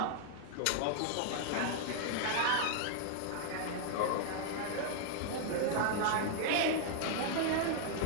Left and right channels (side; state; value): both; different; correlation -0.01